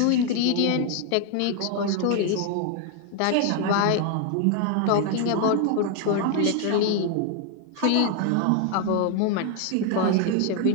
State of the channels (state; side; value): different; both; correlation 0.01